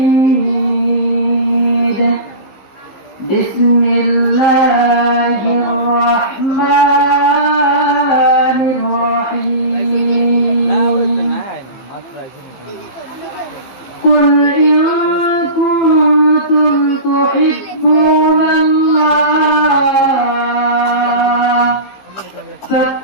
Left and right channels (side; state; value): right; late; 15 ms